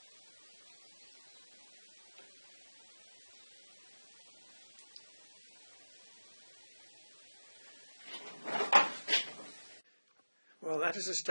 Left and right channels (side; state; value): both; inverted; correlation -1.00